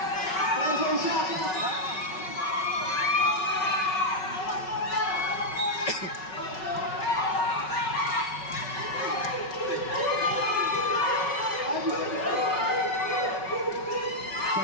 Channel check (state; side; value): late; right; 5.4 ms